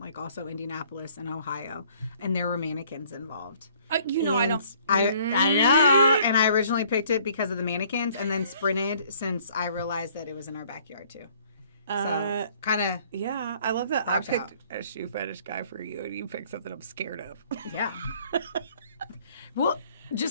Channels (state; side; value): inverted; both; correlation -0.58